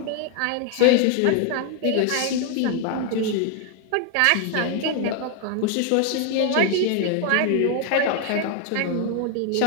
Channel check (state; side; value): different; both; correlation 0.00